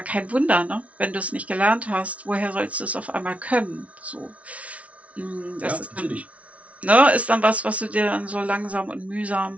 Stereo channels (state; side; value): late; left; 0.065 ms